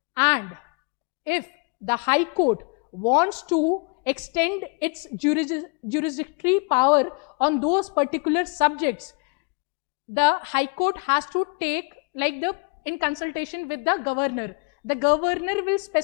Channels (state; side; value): quieter; right; 35.0 dB